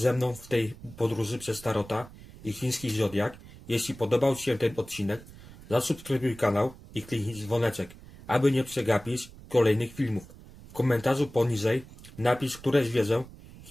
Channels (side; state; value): right; noise; rumble, 19 dB below the sound